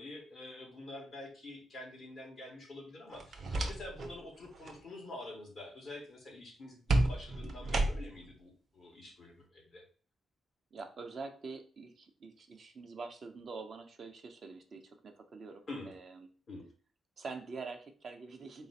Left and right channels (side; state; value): both; normal; correlation 0.88